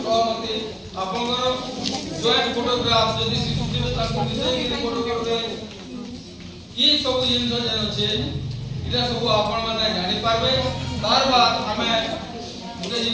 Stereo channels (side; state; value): both; identical; correlation 1.00